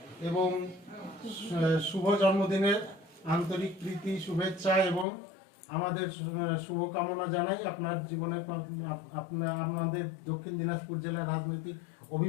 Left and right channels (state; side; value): drops out; right; at 5.1 s